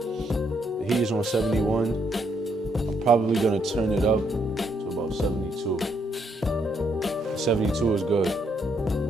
heat is on 71. I'm probably gonna turn it up to about 72. 72 is good.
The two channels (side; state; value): both; normal; correlation 0.74